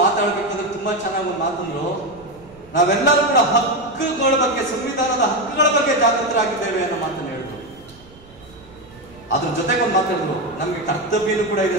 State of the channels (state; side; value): noise; right; rumble, 24 dB below the sound